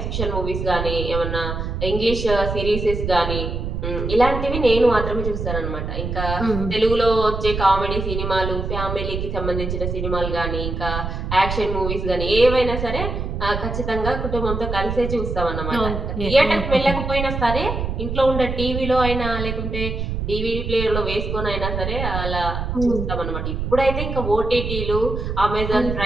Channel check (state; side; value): noise; right; rumble, 3 dB below the sound